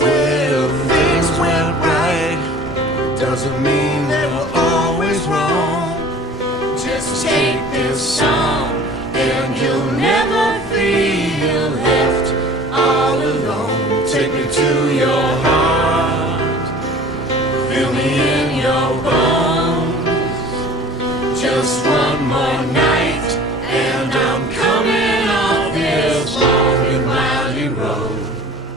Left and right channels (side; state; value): both; normal; correlation 0.46